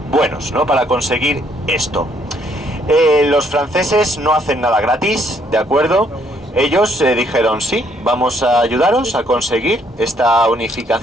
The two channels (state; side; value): normal; both; correlation 0.68